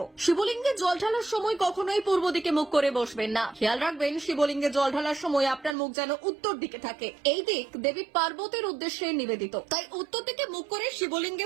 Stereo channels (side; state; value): left; drops out; at 5.8 s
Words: শিবলিঙ্গে জল ঢালার সময় কখনোই পূর্ব দিকে মুখ করে বসবেন না। খেয়াল রাখবেন শিবলিঙ্গে জল ঢালার সময় আপনার মুখ যেন উত্তর দিকে থাকে। এই দিক দেবী পার্বতীর উদ্দেশ্যে নিবেদিত, তাই উত্তর দিকে মুখ করে শিবলিঙ্গে